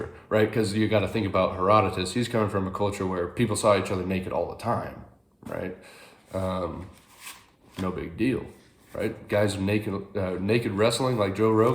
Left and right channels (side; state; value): both; identical; correlation 1.00